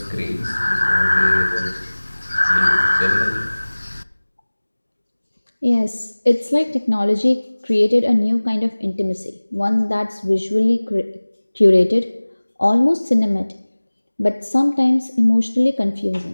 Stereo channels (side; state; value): both; inverted; correlation -1.00